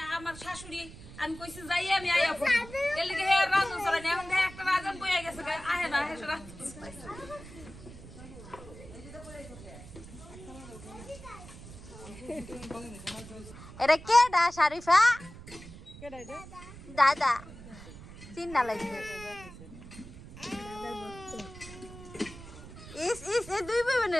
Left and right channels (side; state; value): right; noise; rumble, 16 dB below the sound